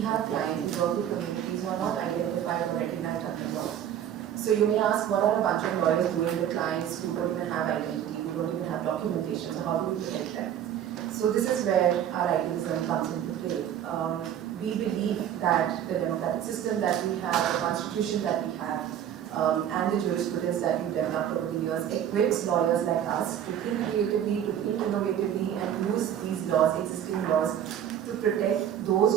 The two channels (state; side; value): quieter; left; 10.1 dB